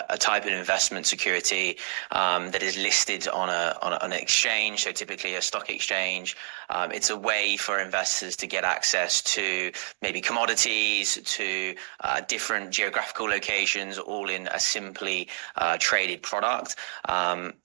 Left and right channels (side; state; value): left; quieter; 34.5 dB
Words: type of investment security that is listed on an exchange, so typically a stock exchange. It's a way for investors to get access to maybe commodities, to different geographical locations, all in a simply traded product. And